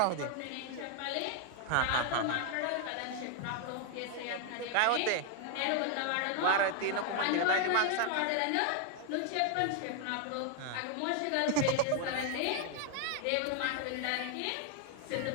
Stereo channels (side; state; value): both; different; correlation 0.00